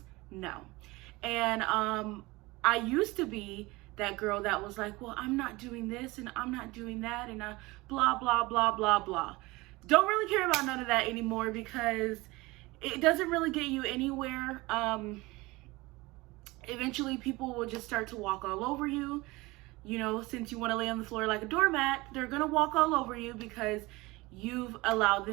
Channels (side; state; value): left; quieter; 22.0 dB